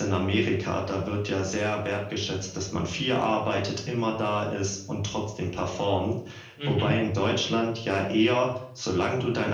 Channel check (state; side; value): identical; both; correlation 1.00